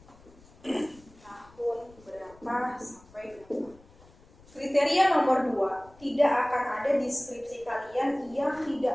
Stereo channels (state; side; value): noise; left; rumble, 26 dB below the sound